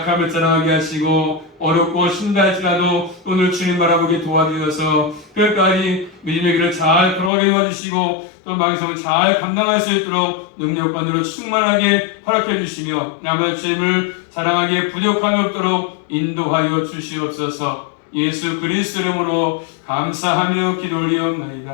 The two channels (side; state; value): right; drops out; at 7.3 s